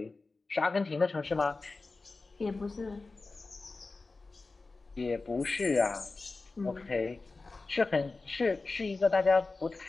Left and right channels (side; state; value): right; quieter; 3.7 dB